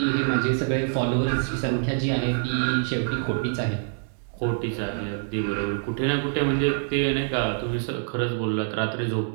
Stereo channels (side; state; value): left; silent; digital silence